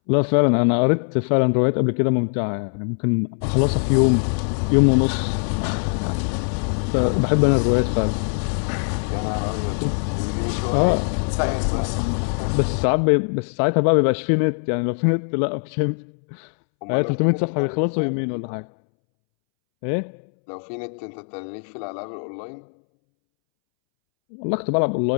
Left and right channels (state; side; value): silent; right; 65 dB below the other